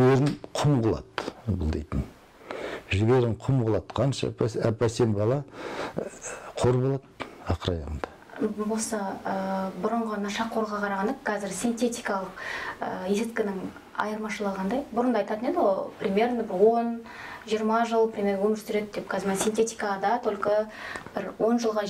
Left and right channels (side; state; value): both; identical; correlation 1.00